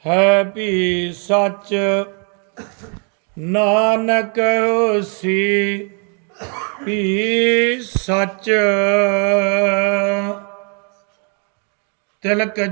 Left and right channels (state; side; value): quieter; left; 39.2 dB